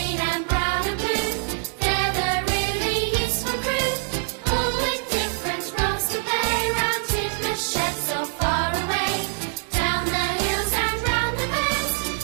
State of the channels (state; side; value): silent; left; 62 dB below the other